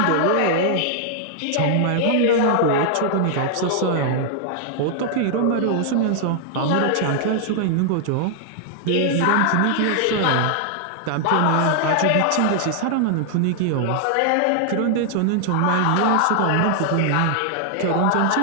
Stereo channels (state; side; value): different; both; correlation 0.00